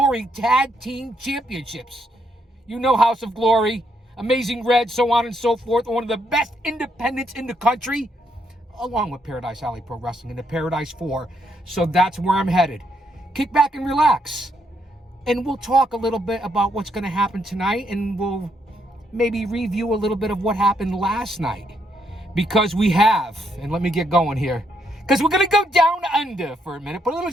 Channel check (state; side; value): normal; both; correlation 0.76